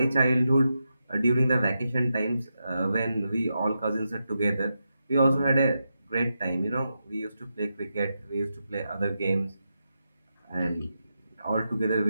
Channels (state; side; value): inverted; both; correlation -0.87